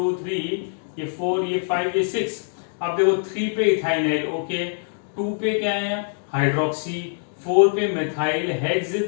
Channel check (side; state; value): right; silent; digital silence